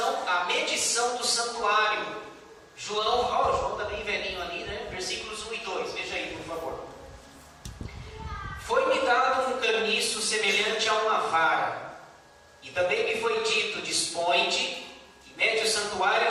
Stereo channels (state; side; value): identical; both; correlation 1.00